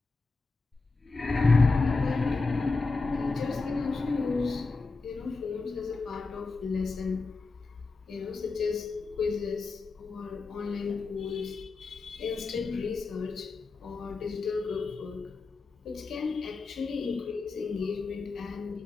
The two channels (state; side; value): quieter; right; 3.9 dB